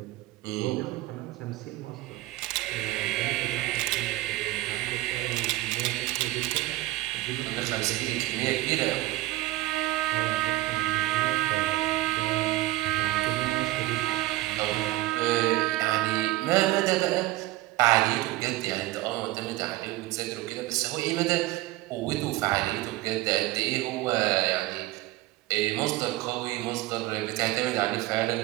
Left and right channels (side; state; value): left; quieter; 17.5 dB